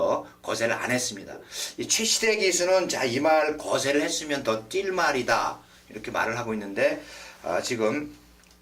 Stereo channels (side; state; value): both; identical; correlation 1.00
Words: 거세를 안 했습니다. 이 최시대 기수는 자, 이 말 거세를 했으면 더 뛸 말이다 이렇게 말을 하고 있는데 지금